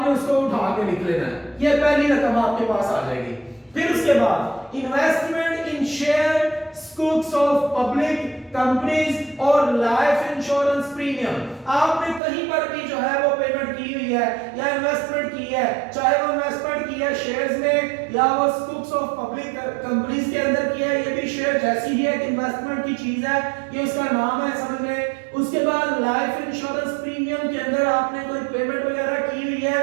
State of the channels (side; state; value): left; drops out; at 12.2 s